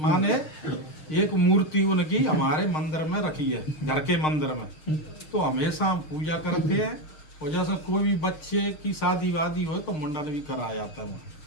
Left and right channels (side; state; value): right; late; 6.5 ms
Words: एक मूर्ति उनकी हमारे मंदिर में रखी है, घर के मंदिर में। तो हमेशा हम पूजा करते हैं, और जैसे कोई भी बच्चे की शादी वादी हो तो मुंडन भी कराया जाता है।